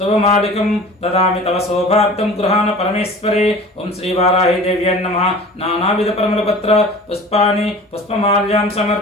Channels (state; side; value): normal; both; correlation 0.41